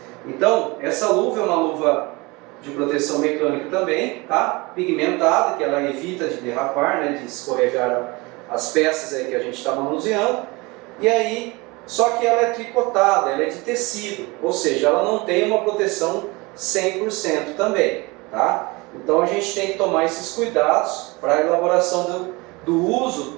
Então, essa luva é uma luva de proteção mecânica também, tá? Pigmentada, que ela evita de derrapar, né? De escorregar as peças aí que a gente está manuseando. E aí, só que ela é tricotada, ela é de tecido, ou seja, ela não tem uma proteção 100% também, tá? Então a gente tem que tomar esses cuidados para a elaboração do uso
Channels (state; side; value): quieter; left; 24.9 dB